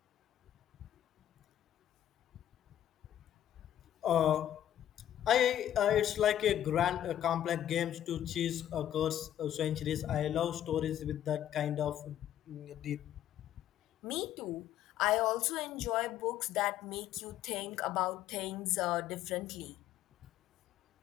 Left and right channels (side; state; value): right; quieter; 11.4 dB